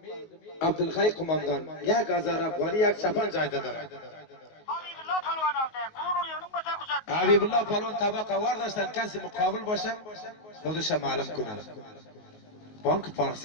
Abdülhay kumandan yak azar Afgani yak Şapan caydadır. Habibullah Palvan tabak avardashdan kasi muqobil bo'lsa, xuddi ma'lum kunali. Bank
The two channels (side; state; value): right; late; 19 ms